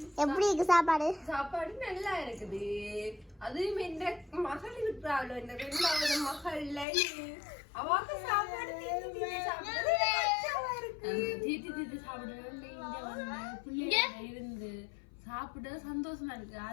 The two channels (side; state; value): right; drops out; at 6.9 s